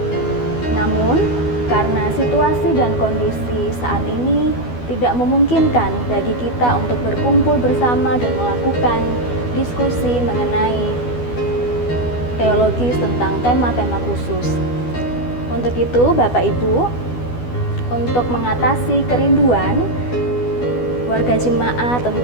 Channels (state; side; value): late; right; 12 ms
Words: Namun, karena situasi dan kondisi saat ini tidak memungkinkan bagi kita untuk berkumpul bersama dan melakukan diskusi mengenai teologis tentang tema-tema khusus. Untuk itu, Bapak Ibu, untuk mengatasi kerinduan warga jemaat